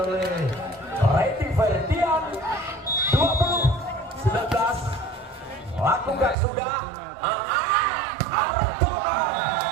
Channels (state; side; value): drops out; left; at 6.4 s